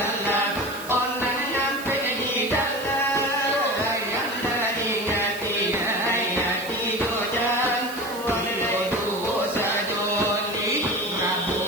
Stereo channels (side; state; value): right; noise; hiss, 15 dB below the sound